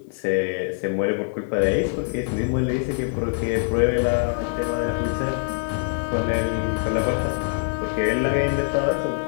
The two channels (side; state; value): right; silent; digital silence